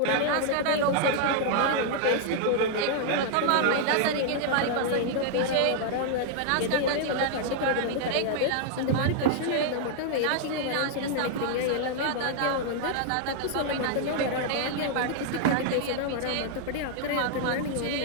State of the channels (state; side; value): different; both; correlation -0.01